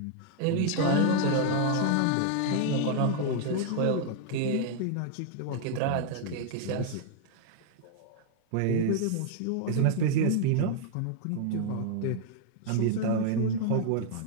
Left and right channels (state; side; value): different; both; correlation 0.00